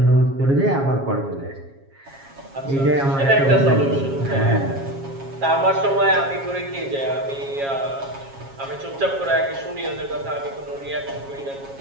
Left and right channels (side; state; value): left; late; 7.3 ms